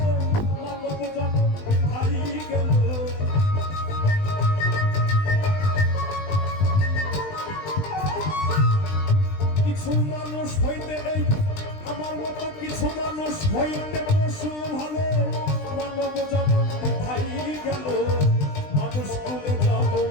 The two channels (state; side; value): late; right; 20 ms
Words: মানব জন্ম হাই গেল কিছু মানুষ হইতে এই আমার মতো কিছু মানুষ হইতে পশু ভালো মানব জন্ম হাই গেল মানুষ কুলে জন্ম